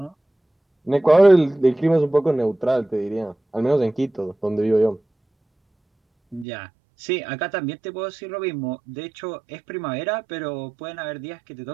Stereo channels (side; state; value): left; drops out; at 6.5 s